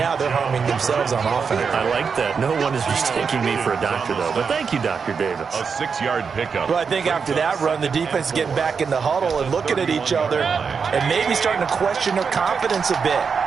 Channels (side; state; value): left; quieter; 5.8 dB